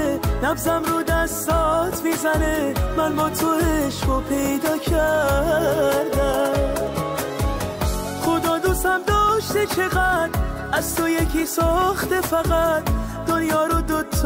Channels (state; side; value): identical; both; correlation 1.00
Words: نبضم رو دستات میزنه، من با تو عشقو پیدا کردم. خدا دوستم داشته چقدر، از تو یکی ساخته فقط، دنیا رو